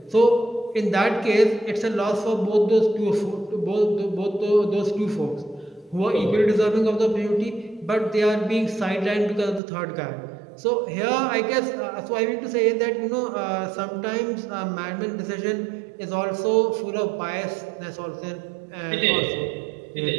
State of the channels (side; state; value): left; drops out; at 9.6 s